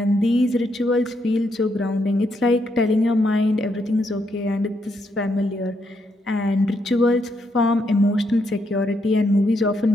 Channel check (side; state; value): both; normal; correlation 0.78